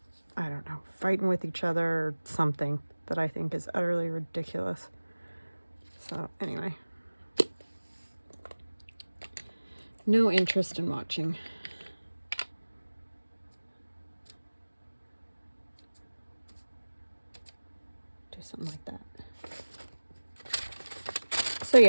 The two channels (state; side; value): inverted; both; correlation -1.00